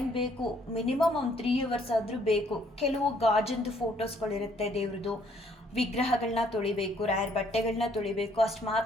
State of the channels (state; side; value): normal; both; correlation 0.65